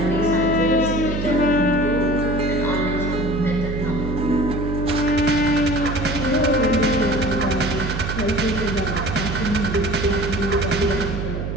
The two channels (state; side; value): noise; right; hum, 4 dB below the sound